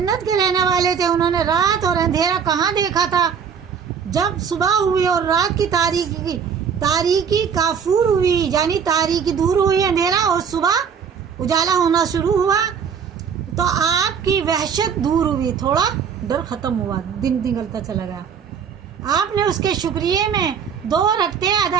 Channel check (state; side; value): quieter; left; 7.0 dB